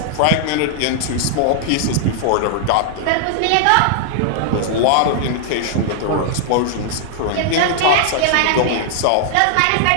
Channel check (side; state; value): both; different; correlation 0.00